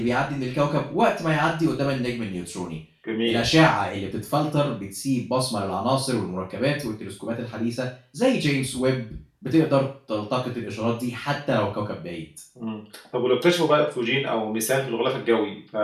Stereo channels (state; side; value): identical; both; correlation 1.00